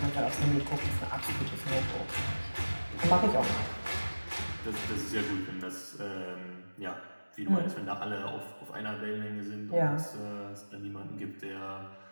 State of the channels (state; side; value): inverted; both; correlation -1.00